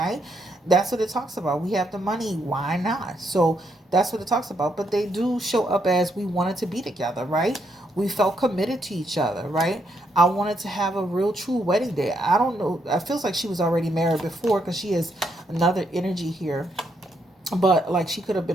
That's what it talks about. We have the money. Why not? So that's what it talks about. But they do show up as we wanted to be together, right? We felt committed to each other, right? I wanted to have a real true wedding day. I don't know. It feels like she was already married before, because she has another energy here. But like, she could have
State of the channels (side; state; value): both; normal; correlation 0.77